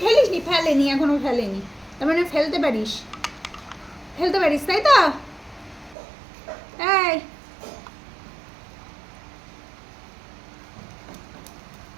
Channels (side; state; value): left; drops out; at 6.0 s